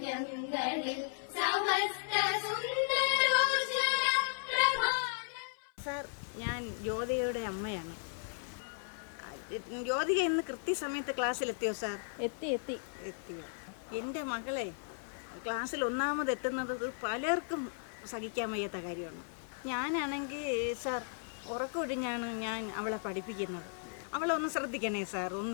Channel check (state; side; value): silent; right; 54 dB below the other